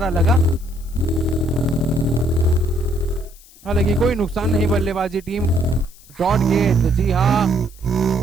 लगा, हालांकि कोई नुकसान नहीं बल्लेबाजी टीम। डॉट गेंद, जी हाँ,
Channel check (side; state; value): left; noise; hiss, 24 dB below the sound